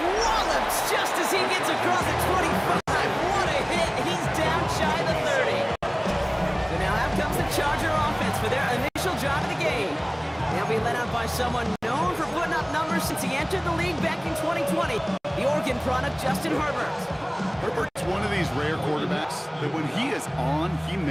just as he gets across the 25. What someone known for putting up numbers since he entered the league back in 2020. The Oregon product, Justin Herbert. Herbert's one of these rare quarterbacks that when he is on, he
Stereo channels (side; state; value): both; identical; correlation 1.00